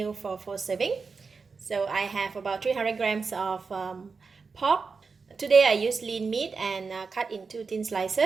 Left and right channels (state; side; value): quieter; left; 4.8 dB